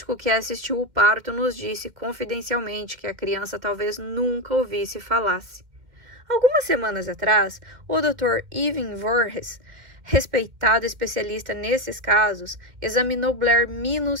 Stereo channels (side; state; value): left; late; 2.1 ms